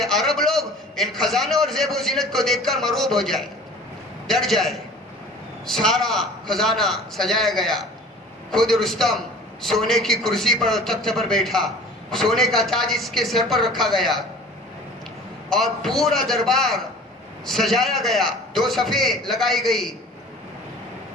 عرب لوگ ان خزانوں اور زیب و زینت کو دیکھ کر مرعوب ہو جائے، ڈر جائے۔ سارا خزانہ سجایا گیا، خود رستم سونے کی کرسی پر تخت پر بیٹھا، سونے کا تاج اس کے سر پر رکھا گیا اور پورا دربار سجایا گیا، 2 صفیں لگائی گئی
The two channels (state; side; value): normal; both; correlation 0.45